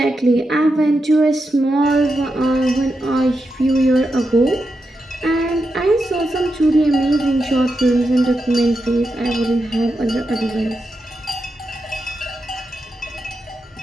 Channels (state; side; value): normal; both; correlation 0.87